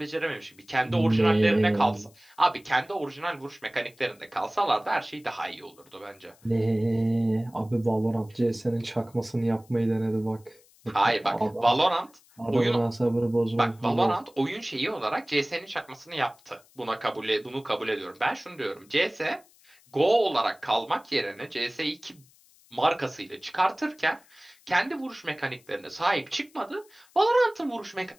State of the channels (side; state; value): left; noise; hiss, 29 dB below the sound